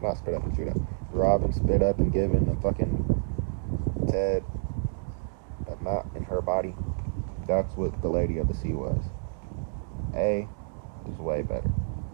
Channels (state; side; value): silent; left; digital silence